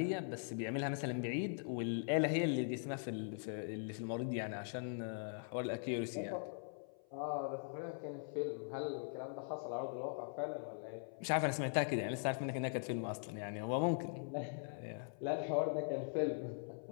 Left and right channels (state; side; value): silent; right; 50 dB below the other